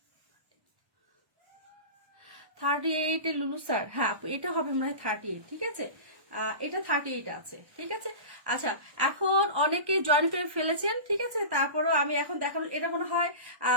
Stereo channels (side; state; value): left; late; 1.1 ms